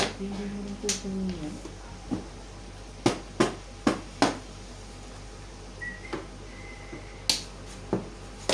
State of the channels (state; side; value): identical; both; correlation 1.00